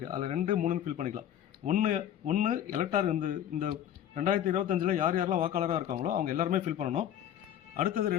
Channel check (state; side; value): quieter; right; 10.4 dB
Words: அதில் 2, 3 ஃபில் பண்ணிக்கலாம். ஒன்று எலக்டார் இந்த 2025 யார் யாரெல்லாம் வாக்காளராக இருக்காங்களோ அவங்க எல்லாருமே ஃபில் பண்ணணும். அடுத்தது